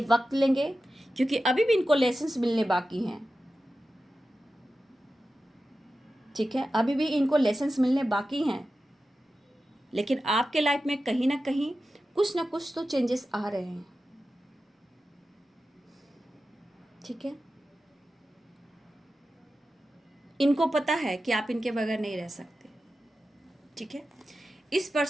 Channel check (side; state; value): both; normal; correlation 0.93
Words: वक्त लेंगे क्योंकि अभी भी इनको लेसन्स मिलने बाकी हैं, ठीक है? अभी भी इनको लेसन्स मिलने बाकी हैं। लेकिन आपके लाइफ में कहीं ना कुछ तो चेंजेस आ रहे हैं, ठीक है? इनको पता है कि आप इनके बगैर नहीं रह सकते, ठीक है? इस